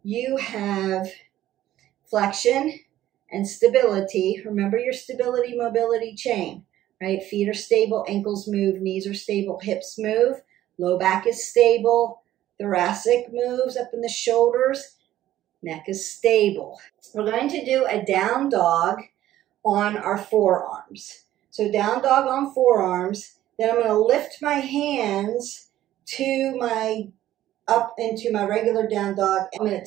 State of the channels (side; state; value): left; quieter; 13.5 dB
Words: you have flexion and stability. Remember your stability mobility chain, right? Feet are stable, ankles move, knees are stable, hips move, low back is stable, thoracic moves up in the shoulders, neck is stable. We're going to do a down dog on our forearms. So down dog on forearms. Then I'm going to lift my hands to my, up into my regular down dog. I'm going to